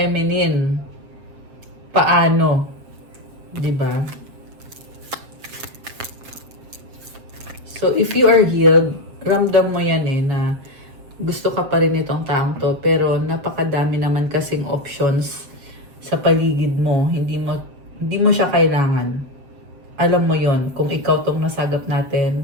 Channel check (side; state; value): left; late; 7.6 ms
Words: Paano? 'Di ba? So, if you are healed, ramdam mo yan eh na gusto ka pa rin itong taong to, pero napakadami naman kasing options sa paligid mo. Hindi mo siya kailangan. Alam mo yon kung ikaw tong nasagap natin